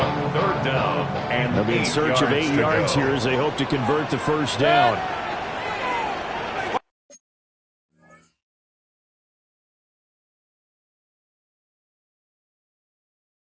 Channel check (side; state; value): both; identical; correlation 1.00